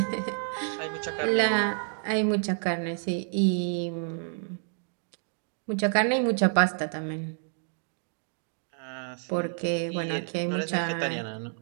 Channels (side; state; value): left; silent; digital silence